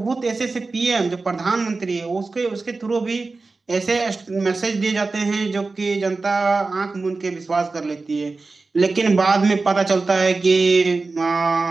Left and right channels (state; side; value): quieter; left; 3.8 dB